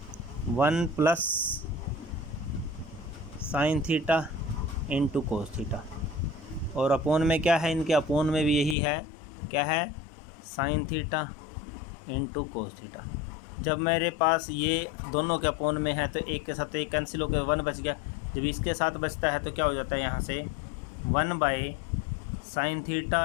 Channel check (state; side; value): drops out; right; at 8.8 s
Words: 1 plus sign theta into cos theta. और अपोन में क्या है, इनके अपोन में भी यही है, क्या है, sine theta into cos theta. जब मेरे पास ये दोनों के अपोन में है तो एक के साथ तो एक कैंसिल होकर 1 बच गया। जब इसके साथ बचता है तो क्या हो जाता है, यहाँ से 1 bye sine